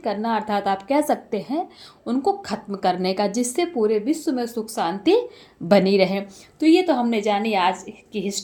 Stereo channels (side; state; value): both; identical; correlation 1.00